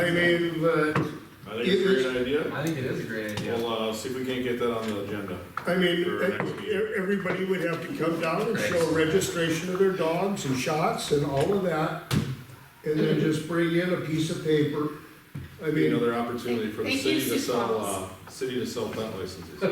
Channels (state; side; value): identical; both; correlation 1.00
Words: mean, but, I think it's a great idea. I think it is a great idea. We'll, see if we can't get that on the agenda. I mean, For next meeting. everybody would have to come down and show registration of their dogs and shots and all of that, and then just bring in a piece of paper. I Be mean, another opportunity for the Thank city you, to Sioux Falls. sell pet licenses.